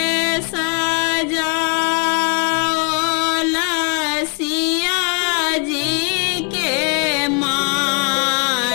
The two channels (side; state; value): right; quieter; 36.7 dB